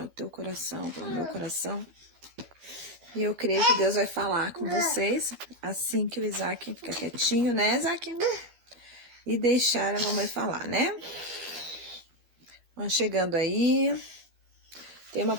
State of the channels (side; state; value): left; late; 12 ms